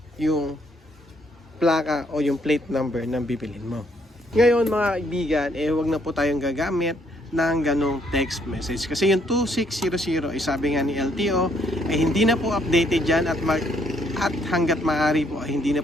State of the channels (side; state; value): both; normal; correlation 0.69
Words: yung plaka o yung plate number ng bibilin mo. Ngayon mga kaibigan, huwag na po tayong gagamit ng ganong text message kasi yung 2600 ay sabi nga ni LTO ay hindi na po updated dyan at hanggat maaari po ay hindi na